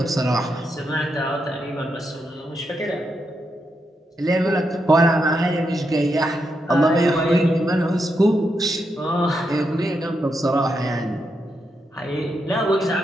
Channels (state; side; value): normal; both; correlation 0.83